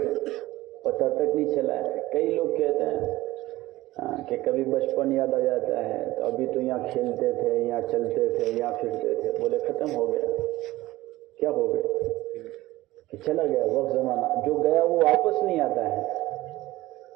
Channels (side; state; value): left; quieter; 17.6 dB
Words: پتہ تک نہیں چلا ہے. کئی لوگ کہتے ہیں کہ کبھی بچپن یاد آ جاتا ہے تو ابھی تو یہاں کھیلتے تھے، یہاں چلتے تھے، یہاں پھرتے تھے. بولے ختم ہو گیا. کیا ہو گیا؟ کہ چلا گیا وقت، زمانہ جو گیا وہ واپس نہیں آتا ہے.